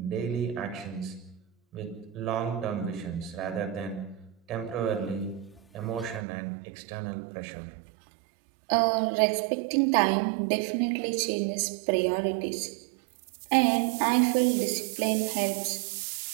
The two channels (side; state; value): left; drops out; at 6.2 s